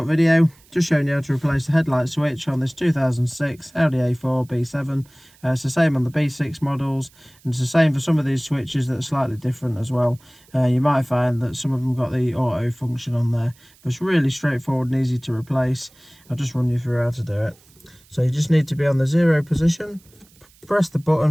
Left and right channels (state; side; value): noise; right; hiss, 29 dB below the sound